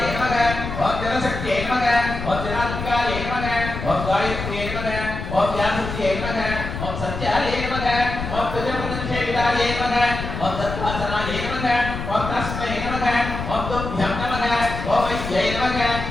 நமக ஓம் ஜனசக்தியே நமக ஓம் ஜனாத்மிகாய நமக ஓம் காயத்ரியே நமக ஓம் வியாசத்யே நமக ஓம் சத்யாய நமக ஓம் துஜமுதன்ஷேவிதாய நமக ஓம் தத்வாசனாய நமக ஓம் தஸ்மை நமக ஓம் துभ्यं நமக ஓம் வைத்யை நமக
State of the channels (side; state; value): left; noise; rumble, 6 dB below the sound